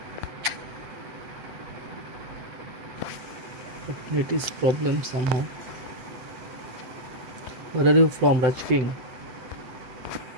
But it is problem somehow. Where are you from, Raj King?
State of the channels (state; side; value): late; left; 8.0 ms